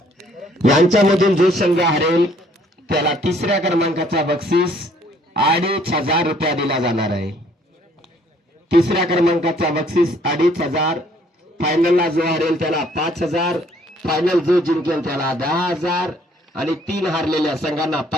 यांच्यामधून जो संघ हरेल त्याला 3ऱ्या क्रमांकाचा बक्षीस 2500 रुपया दिला जाणार आहे. 3ऱ्या क्रमांकाचा बक्षीस 2500. फायनलला जो हरेल त्याला 5000. फायनल जो जिंकेल त्याला 10,000 आणि 3 हारलेल्या संघांना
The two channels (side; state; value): both; normal; correlation 0.62